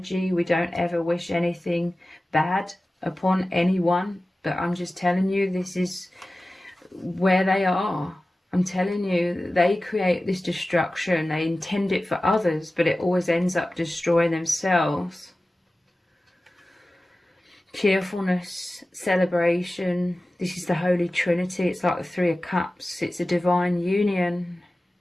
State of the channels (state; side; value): normal; both; correlation 0.96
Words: We don't ever wish anything bad upon anyone. But I'm just telling you, this is where they are. I'm telling you, they create this destruction. They intend it for others, but it always ends up destroying themselves. Cheerfulness, celebration. This is the Holy Trinity. It's like the Three of Cups. It's a divine union.